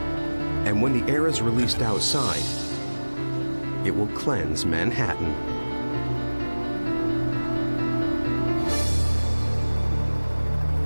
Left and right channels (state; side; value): inverted; both; correlation -1.00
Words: And when the air is released outside, it will cleanse Manhattan.